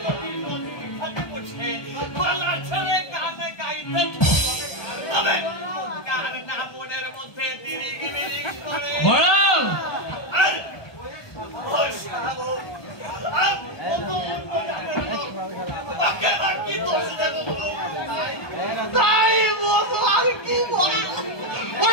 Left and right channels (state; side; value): late; right; 1.2 ms